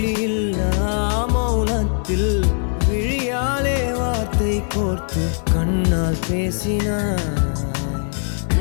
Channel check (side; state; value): right; silent; 61 dB below the other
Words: மௌனத்தில் விழியாலே வார்த்தை கோர்த்து கண்ணால் பேசினாய்,